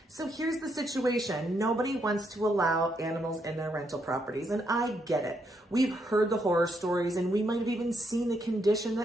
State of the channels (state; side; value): normal; both; correlation 0.77